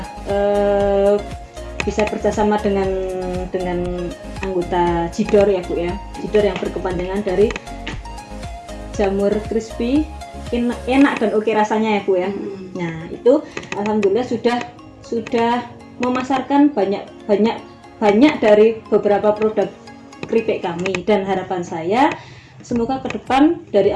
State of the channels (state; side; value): identical; both; correlation 1.00